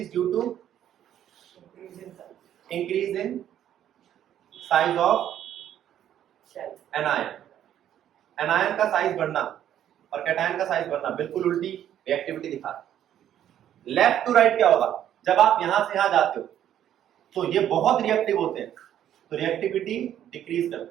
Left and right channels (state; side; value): quieter; left; 10.8 dB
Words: due to increase in size of anion. Anion का साइज बढ़ना और कैटायन का साइज बढ़ना बिल्कुल उल्टी रिएक्टिविटी दिखा। लेफ्ट टू राइट क्या होगा? जब आप यहां से यहां जाते हो तो ये बहुत रिएक्टिव होते हैं, तो रिएक्टिविटी डिक्रीज